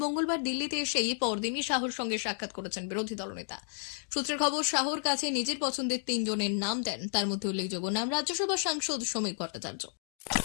মঙ্গলবার দিল্লিতে এসেই পরদিনই শাহর সঙ্গে সাক্ষাৎ করেছেন বিরোধী দলনেতা। সূত্রের খবর, শাহর কাছে নিজের পছন্দের 3 জনের নাম দেন। তার মধ্যে উল্লেখযোগ্য নাম রাজ্যসভা সাংসদ সমীর ভট্টাচার্য।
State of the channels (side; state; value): right; silent; digital silence